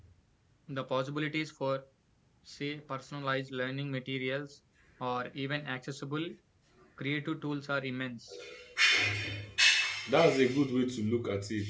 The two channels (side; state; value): both; identical; correlation 1.00